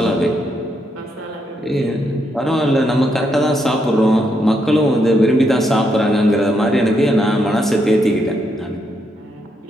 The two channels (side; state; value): both; normal; correlation 0.78